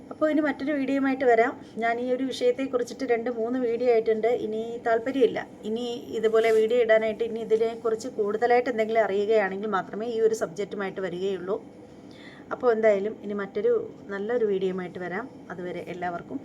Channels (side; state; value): both; identical; correlation 1.00